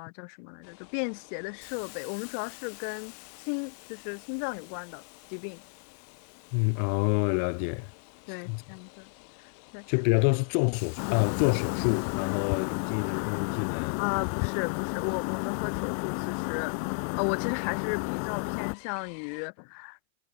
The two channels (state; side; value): silent; right; 57 dB below the other